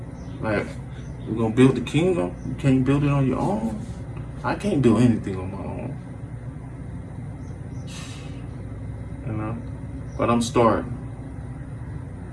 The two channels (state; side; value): identical; both; correlation 1.00